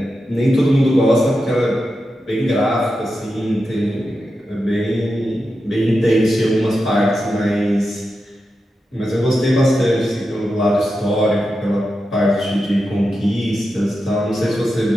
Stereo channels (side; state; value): both; normal; correlation 0.89